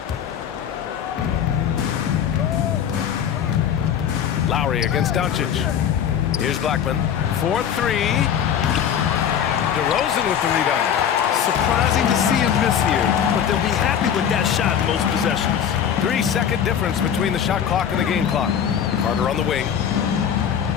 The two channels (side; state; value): right; quieter; 8.7 dB